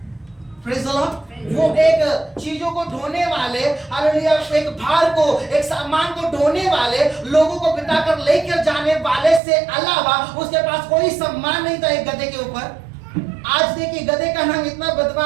Praise the Lord. वो एक चीजों को ढोने वाले, हालेलुया, एक भार को, एक सामान को ढोने वाले, लोगों को बिताकर लेकर जाने वाले से अलावा उसके पास कोई सम्मान नहीं था एक गधे के ऊपर। आज देखिए गधे का नाम इतना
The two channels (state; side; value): drops out; left; at 9.4 s